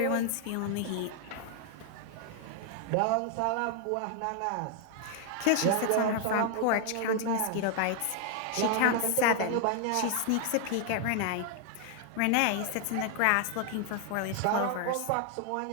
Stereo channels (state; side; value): different; both; correlation 0.00